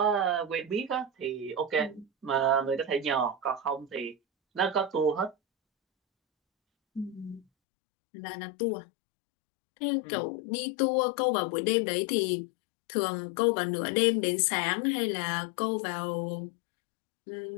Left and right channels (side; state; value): right; drops out; at 7.5 s